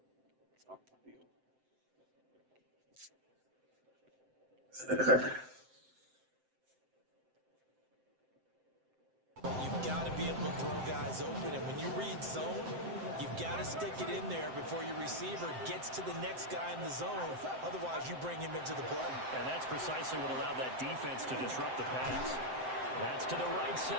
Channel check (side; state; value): left; late; 7.7 ms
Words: Off the field. You've got to be able to throw guys open, and when you read zone, you've got to stick it in there before your receiver gets to the next guy in the zone. Otherwise, you bring him into the play. And that's precisely what allowed that defense to disrupt the pass. That's to the right